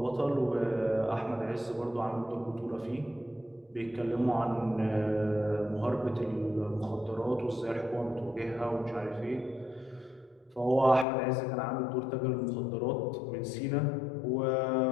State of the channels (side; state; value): right; drops out; at 11.1 s